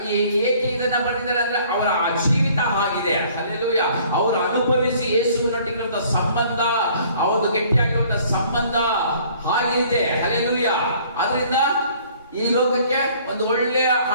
ಏಕೆ ಇದನ್ನ ಬರೆದಿದ್ದಾರೆ ಅಂದ್ರೆ ಅವರ ಜೀವಿತ ಆಗಿದೆ. ಹಲ್ಲೆಲೂಯಾ. ಅವರು ಅನುಭವಿಸಿ ಯೇಸುವಿನೊಟ್ಟಿಗಿರುವಂತ ಸಂಬಂಧ, ಅವರು ಗಟ್ಟಿಯಾಗಿರುವಂತ ಸಂಬಂಧ ಆಗಿದೆ. ಹಲ್ಲೆಲೂಯಾ. ಅದರಿಂದ ಈ ಲೋಕಕ್ಕೆ ಒಂದು ಒಳ್ಳೆಯ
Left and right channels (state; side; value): inverted; both; correlation -0.56